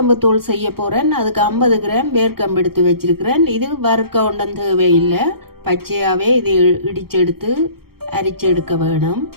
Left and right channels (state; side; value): late; left; 0.94 ms